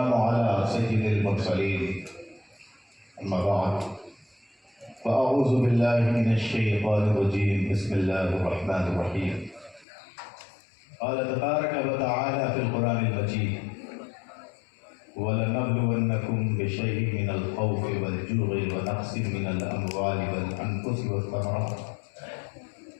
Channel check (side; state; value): right; drops out; at 9.9 s